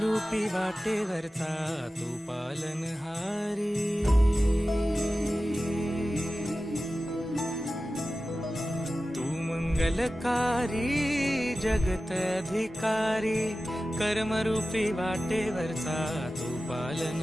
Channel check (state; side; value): normal; both; correlation 0.95